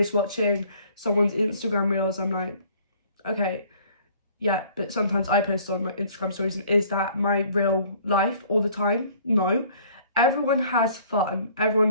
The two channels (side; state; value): both; inverted; correlation -0.55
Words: watching someone's Instagram reels, I'm like, okay, yeah, but sometimes I post on my Instagram stories, and is that my real life all the time? No. Everyone has fun,